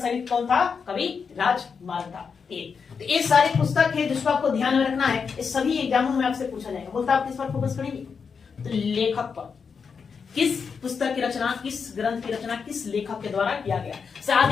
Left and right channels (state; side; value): quieter; right; 5.9 dB